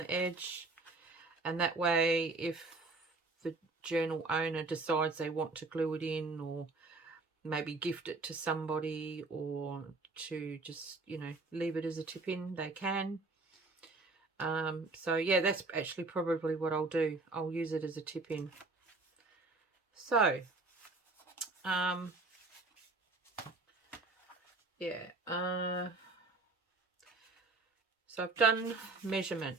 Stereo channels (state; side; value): quieter; left; 3.5 dB